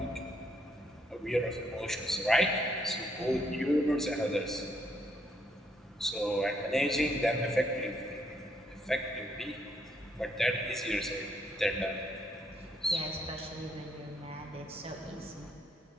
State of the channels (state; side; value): normal; both; correlation 0.73